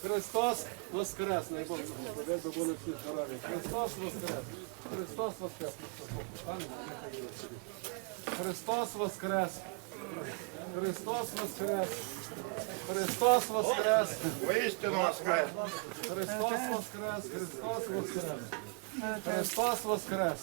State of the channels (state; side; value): quieter; left; 34.5 dB